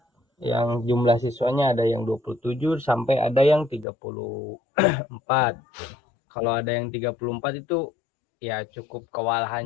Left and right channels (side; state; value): right; drops out; at 3.9 s